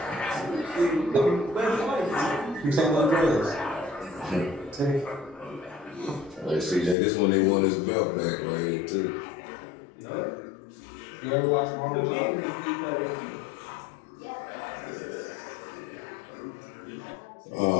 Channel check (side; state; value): right; drops out; at 7.0 s